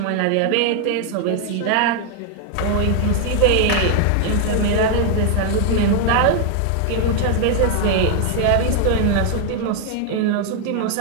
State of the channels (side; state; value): both; different; correlation 0.00